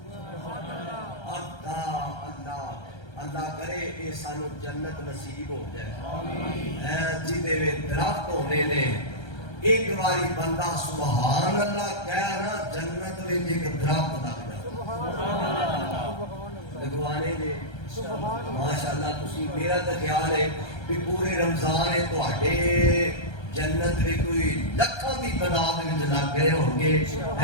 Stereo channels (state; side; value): late; right; 1.3 ms